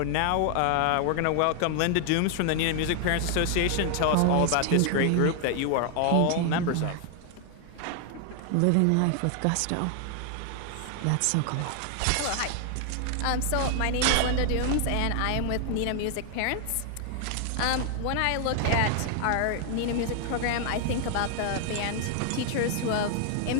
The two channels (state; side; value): different; both; correlation 0.00